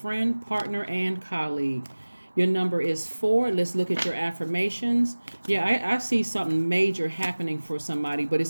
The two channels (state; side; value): inverted; both; correlation -1.00